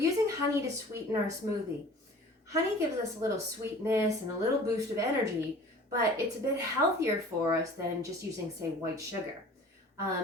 honey to sweeten our smoothie. Honey gives us a little sweetness and a little boost of energy, but it's a bit healthier for us than just using, say, white sugar.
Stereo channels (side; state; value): both; normal; correlation 0.45